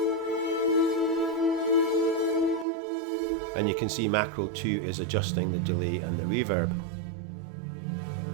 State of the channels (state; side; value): drops out; left; at 2.7 s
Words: And you can see macro 2 is adjusting the delay and the reverb.